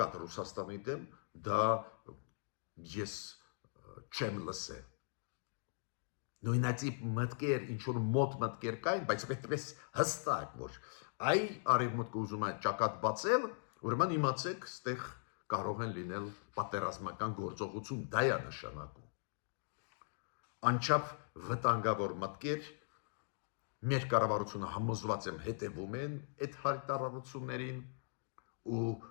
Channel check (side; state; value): right; silent; digital silence